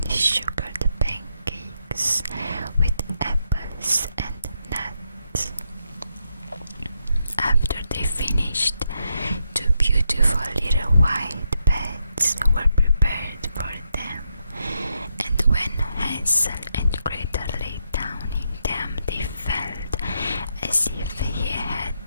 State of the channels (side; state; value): both; inverted; correlation -0.81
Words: sugared pancakes with apples and nuts. After they finished, two beautiful little white beds were prepared for them, and when Hansel and Gretel lay down in them, they felt as if